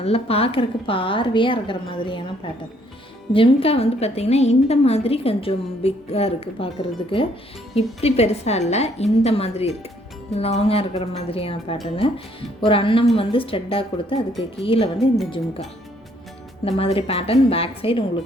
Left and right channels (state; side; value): normal; both; correlation 0.66